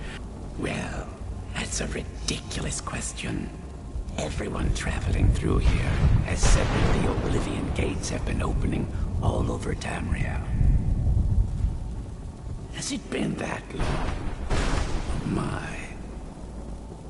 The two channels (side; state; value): both; identical; correlation 1.00